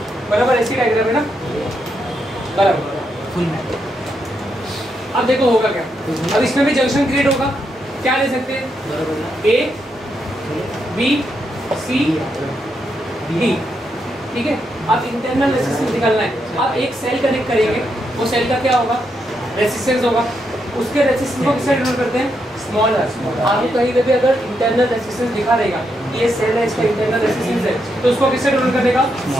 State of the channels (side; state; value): both; normal; correlation 0.81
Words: बराबर ऐसी डायग्राम है ना, बराबर। अब देखो होगा क्या, अब इसमें भी जंक्शन क्रिएट होगा, क्या ले सकते हैं ए बी सी डी, ठीक है। अब इंटरनल रेजिस्टेंस निकालना है, अब एक सेल कनेक्ट करेंगे, वो सेल का क्या होगा रेजिस्टेंस होगा, उसके रेजिस्टेंस को किससे डिनोट करते हैं स्मॉल आर। आपको कहीं पे भी अगर इंटरनल रेजिस्टेंस दिखा रहेगा ये सेल है इसका इंटरनल रेजिस्टेंस है तो उसको किससे डिनोट करेगा